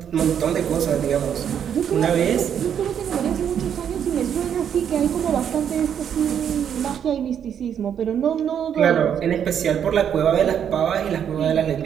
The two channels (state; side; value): quieter; left; 8.7 dB